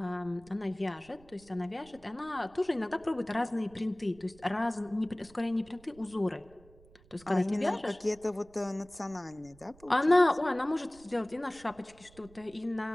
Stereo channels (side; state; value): right; noise; rumble, 25 dB below the sound